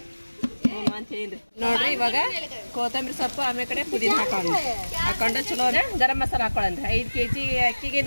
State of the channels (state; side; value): inverted; both; correlation -1.00